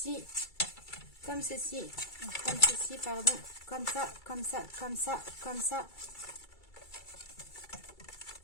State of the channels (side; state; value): right; late; 2.3 ms